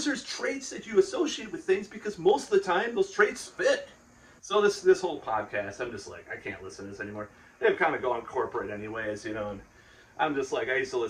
there's traits that you associate with things because most of the time those traits fit. So this whole podcast, I'm just like, I can't listen to this anymore. They've kind of gone corporate anyways, you know. And I'm just like, I used to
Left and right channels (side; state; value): both; identical; correlation 1.00